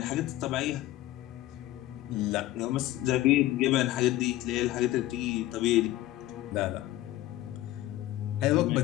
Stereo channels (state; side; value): quieter; right; 15.5 dB